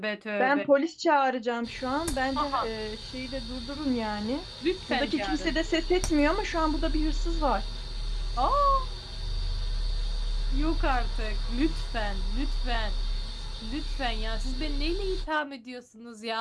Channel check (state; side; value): identical; both; correlation 1.00